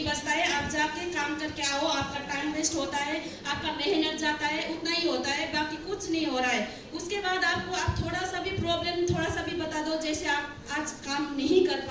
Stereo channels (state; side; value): identical; both; correlation 1.00